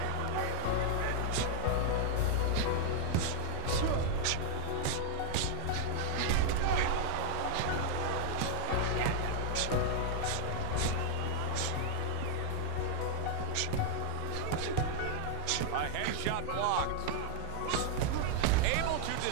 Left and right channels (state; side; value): different; both; correlation 0.00